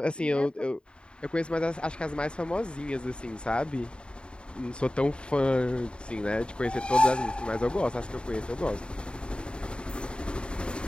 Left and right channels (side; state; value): right; late; 0.052 ms